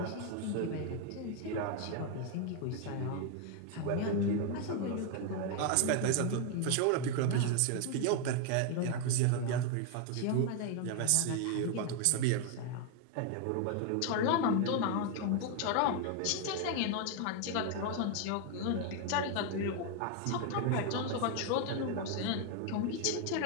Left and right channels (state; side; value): different; both; correlation 0.01